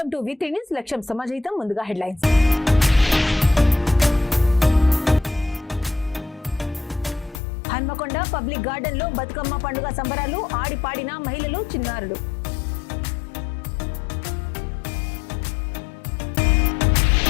to వి3 news. లక్ష్యం సమాజహితం. ముందుగా హెడ్లైన్స్. హన్మకొండ పబ్లిక్ గార్డెన్ లో బతుకమ్మ పండుగ సంబరాలు. ఆడిపాడిన మహిళలు, చిన్నారులు.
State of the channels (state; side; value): drops out; right; at 7.4 s